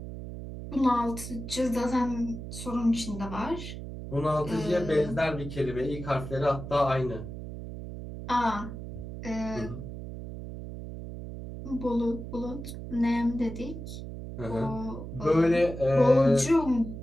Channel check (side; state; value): right; noise; hum, 9 dB below the sound